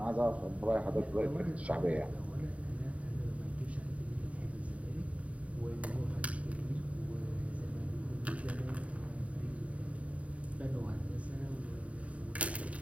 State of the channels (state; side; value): late; left; 0.066 ms